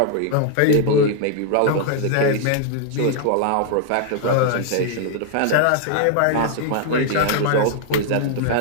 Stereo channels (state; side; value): different; both; correlation 0.00